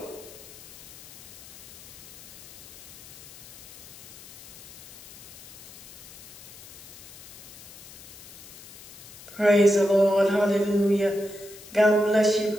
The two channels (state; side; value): noise; left; hiss, 17 dB below the sound